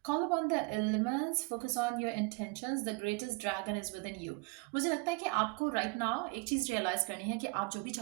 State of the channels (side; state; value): left; quieter; 29.9 dB